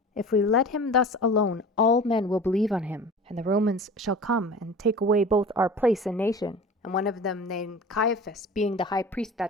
If we let him thus alone, all men will believe on him, and the Romans shall come and take away both our place and nation. And one of them, named Caiaphas, being the high priest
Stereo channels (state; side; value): normal; both; correlation 0.38